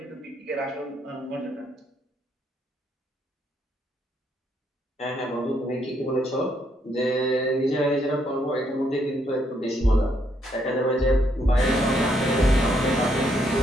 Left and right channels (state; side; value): normal; both; correlation 0.74